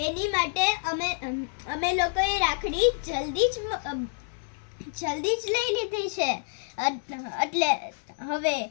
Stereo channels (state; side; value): silent; right; digital silence